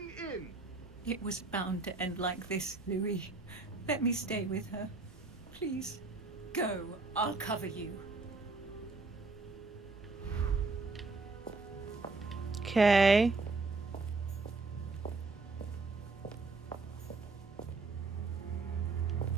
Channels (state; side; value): quieter; left; 3.7 dB